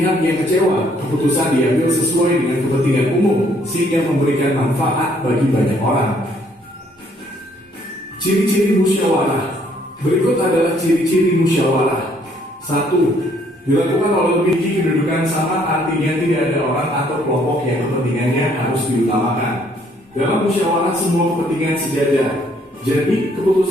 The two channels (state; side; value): normal; both; correlation 0.65